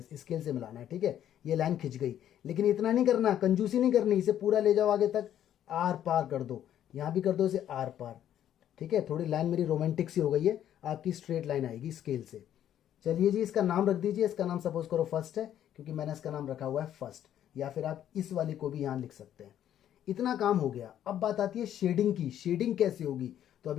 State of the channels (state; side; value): quieter; right; 10.9 dB